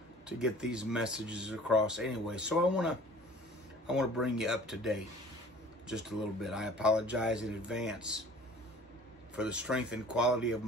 to get these messages across anyway. So I want to bring you up to date just a little bit. I apologize in advance for the strength and quality of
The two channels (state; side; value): normal; both; correlation 0.48